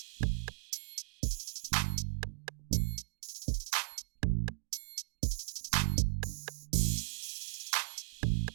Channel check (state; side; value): silent; left; digital silence